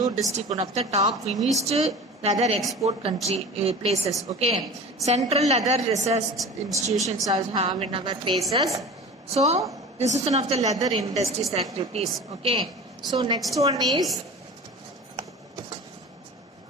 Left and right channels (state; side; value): normal; both; correlation 0.36